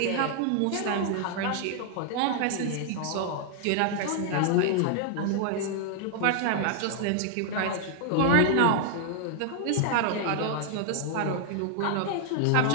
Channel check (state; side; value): different; both; correlation 0.00